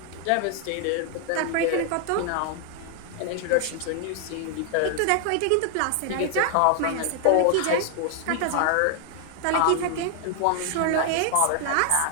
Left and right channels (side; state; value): both; different; correlation 0.00